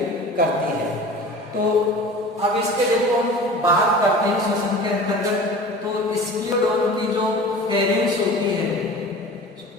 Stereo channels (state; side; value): normal; both; correlation 0.39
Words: करती है। तो अब इसके देखो हम बात करते हैं श्वसन के अंतर्गत। तो स्कोलियोडोन की जो फेरिंग्स होती है,